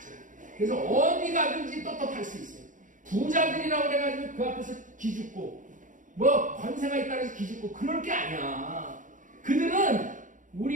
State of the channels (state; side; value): late; left; 0.38 ms